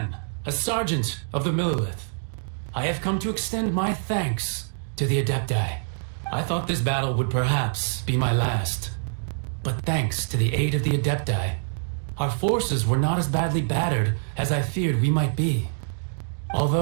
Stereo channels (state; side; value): silent; left; digital silence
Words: a sergeant of the Millilith. I have come to extend my thanks to the Adepti. I thought this battle would perhaps be my last. But thanks to the aid of the Adepti, our forces were not as badly battered as I feared we might be.